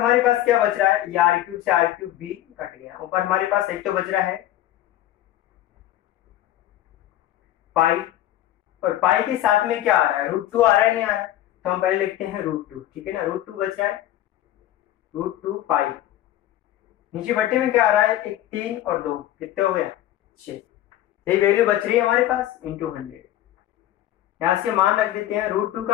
पास क्या बच रहा है, ये r³ से r³ भी कट गया, ऊपर हमारे पास एक तो बच रहा है पाई, और पाई के साथ में क्या आ रहा है √2 आ रहा है, नहीं आ रहा है, तो हम पहले लिखते हैं √2। ठीक है ना, √2 बच रहा है √2 पाई, नीचे बट्टे में क्या आ रहा है एक 3 और 2 कितने हो गया 6, यही वैल्यू बच रही है हमारे पास इंटू 100। यहां से मान रख देते हैं, √2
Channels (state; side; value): quieter; right; 13.5 dB